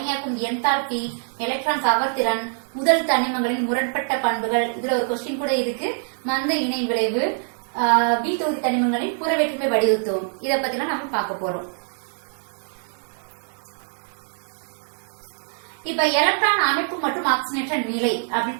என்தால்பி, எலக்ட்ரான் கவர்திறன், முதல் தனிமங்களின் முரண்பட்ட பண்புகள். இதுல ஒரு கொஸ்டின் கூட இருக்கு, மந்த இணை விளைவு, பி தொகுதி தனிமங்களின் புற வேற்றுமை வடிவத்துவம். இதை பத்தி நம்ம பார்க்க போறோம். இப்ப எலக்ட்ரான் அமைப்பு மற்றும் ஆக்சிஜனேற்ற நிலை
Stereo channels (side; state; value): left; silent; digital silence